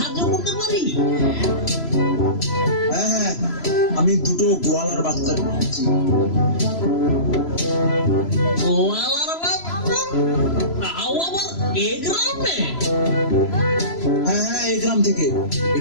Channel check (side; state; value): right; late; 3.0 ms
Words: করতে পারি? হ্যাঁ হ্যাঁ আমি দুটো গোয়ালার বাচ্চা পেয়েছি। গোয়ালার বাচ্চা? তাও আবার এ গ্রামে? হ্যাঁ হ্যাঁ এই গ্রাম থেকে।